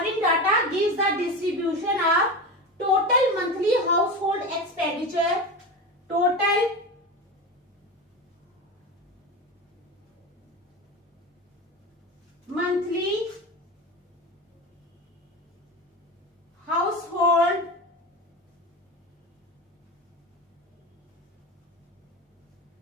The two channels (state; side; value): normal; both; correlation 0.25